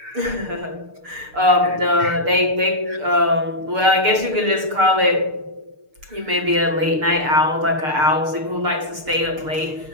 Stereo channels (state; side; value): late; left; 6.6 ms